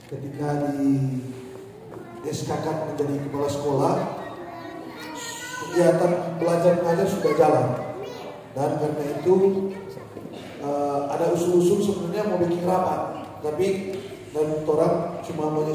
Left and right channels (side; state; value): both; identical; correlation 1.00